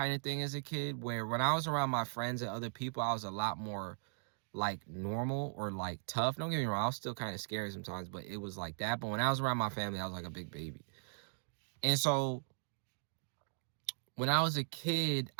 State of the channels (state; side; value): silent; left; digital silence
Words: of thing as a kid where when I was around my friends and other people, I was a lot more like normal or like tough. Don't get me wrong, I was still kind of scary sometimes, but it was like that. But when I was around my family, I was like a big baby. And so when I was a kid,